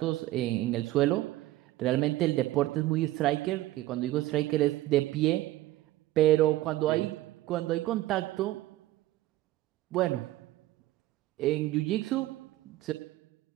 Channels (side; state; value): left; quieter; 16.0 dB